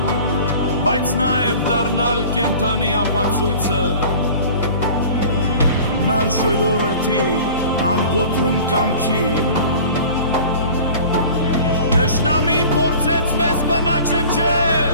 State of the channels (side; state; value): both; inverted; correlation -0.43